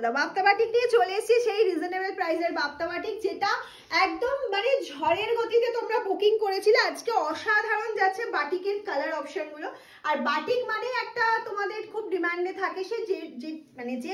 দাও। বাপ্তা বাটিক নিয়ে চলে এসেছি সেই রিজনেবল প্রাইসের বাপ্তা বাটিক, যেটা একদম মানে ঝড়ের গতিতে তোমরা বুকিং করেছিলে। আজকে অসাধারণ যাচ্ছে বাটিকের কালার অপশনগুলো। আর বাটিক মানে একটা তোমাদের খুব ডিমান্ডে থাকে, সে যে মানে যে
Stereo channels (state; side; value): identical; both; correlation 1.00